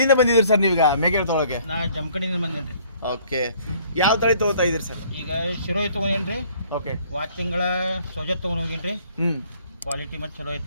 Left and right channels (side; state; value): both; inverted; correlation -0.59